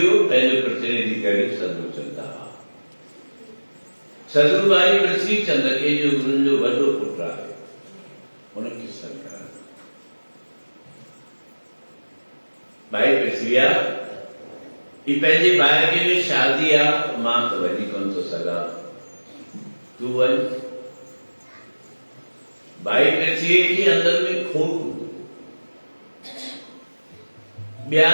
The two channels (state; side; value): inverted; both; correlation -1.00